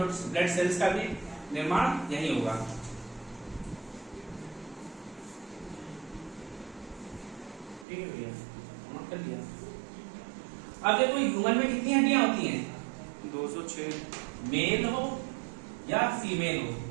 ब्लड सेल्स का भी निर्माण यही होगा। ठीक है भैया, नोट कर लिया। अब देखो ह्यूमन में कितनी हड्डियां होती हैं, 206। मेल हो या फीमेल हो,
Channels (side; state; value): left; drops out; at 7.9 s